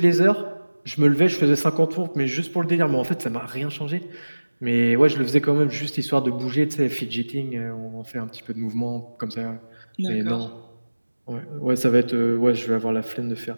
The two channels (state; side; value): inverted; both; correlation -1.00